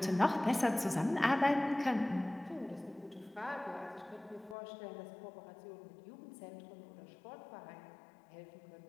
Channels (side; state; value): right; drops out; at 4.5 s